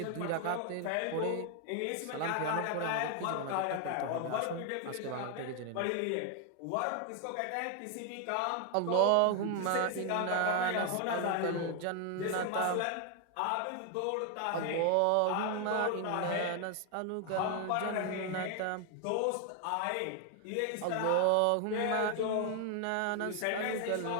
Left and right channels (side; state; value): both; different; correlation 0.00